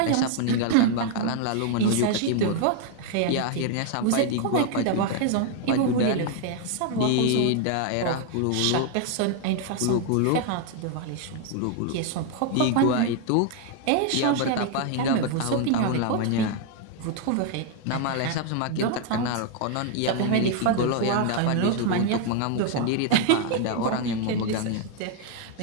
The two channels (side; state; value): both; different; correlation 0.00